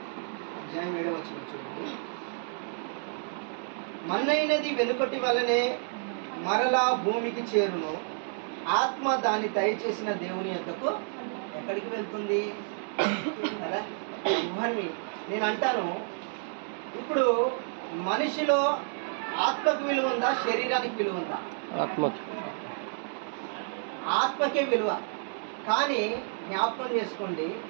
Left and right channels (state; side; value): silent; left; 58 dB below the other